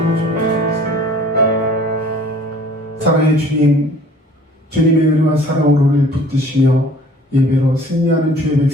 사랑의 주님, 주님의 은혜와 사랑으로 우리를 붙드시며 예배로 승리하는 주의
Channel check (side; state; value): both; normal; correlation 0.51